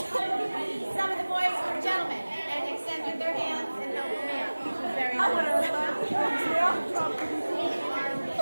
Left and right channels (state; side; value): inverted; both; correlation -1.00